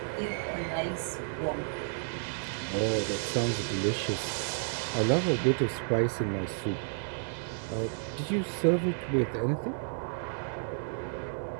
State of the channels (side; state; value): left; silent; digital silence